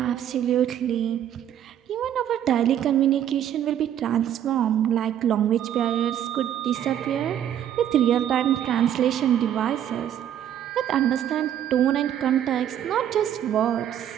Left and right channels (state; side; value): quieter; left; 10.4 dB